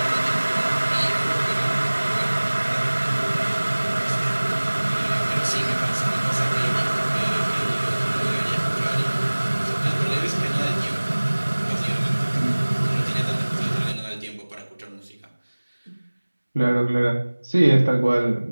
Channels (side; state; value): both; inverted; correlation -1.00